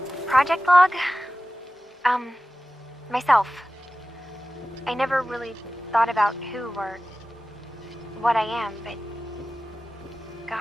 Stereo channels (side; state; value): both; normal; correlation 0.95